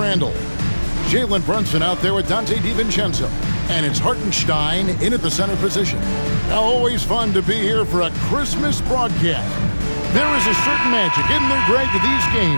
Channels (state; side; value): inverted; both; correlation -1.00